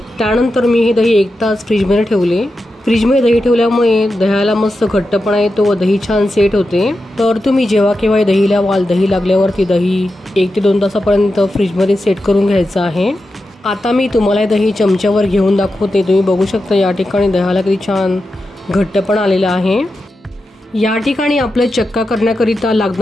त्यानंतर मी हे दही 1 तास फ्रीजमध्ये ठेवले। फ्रीजमध्ये दही ठेवल्यामुळे दह्याला मस्त घट्टपणा येतो व दही छान सेट होते। तर तुम्ही जेव्हा केव्हा दही लावाल, दही लागल्यावरती दही 1 ते 2 तासापर्यंत फ्रीजमध्ये सेट करून घ्यायचं आहे। आता मी तुम्हाला दही चमच्यावर घेऊन दाखवते। तुम्ही बघू शकता या ठिकाणी दह्याला किती छान घट्टपणा आलेला आहे। या ठिकाणी आपलं चक्का करण्याकरिता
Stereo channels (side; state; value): both; normal; correlation 0.90